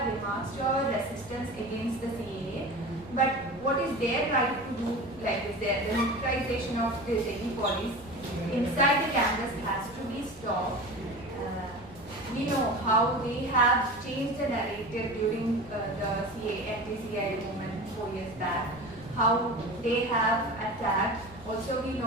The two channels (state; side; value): noise; left; rumble, 21 dB below the sound